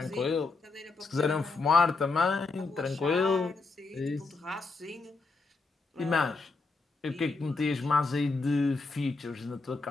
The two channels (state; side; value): quieter; right; 3.9 dB